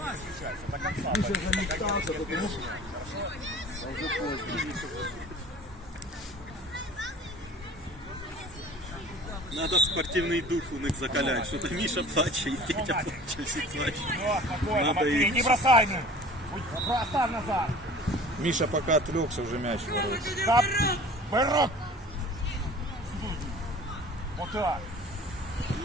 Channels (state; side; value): normal; both; correlation 0.44